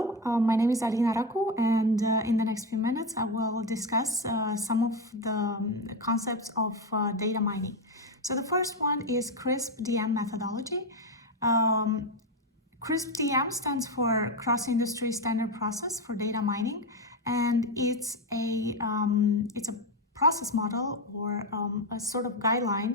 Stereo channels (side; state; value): both; normal; correlation 0.13